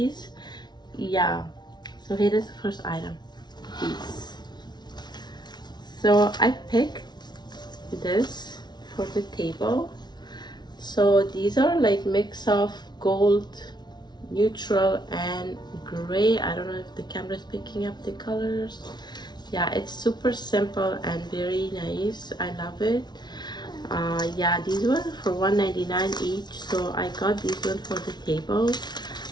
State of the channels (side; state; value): right; late; 0.20 ms